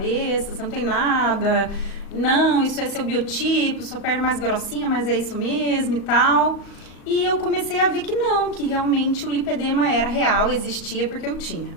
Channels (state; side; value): late; right; 38 ms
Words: você não tem nada, não, isso é seu biotipo, sua perna é mais grossinha, mas é isso mesmo e tal. E eu comecei a ver que não, que realmente o lipedema era real, existia porque eu tinha.